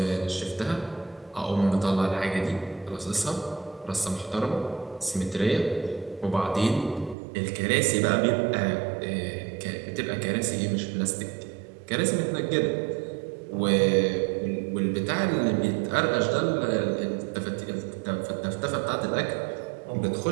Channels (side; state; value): left; drops out; at 7.2 s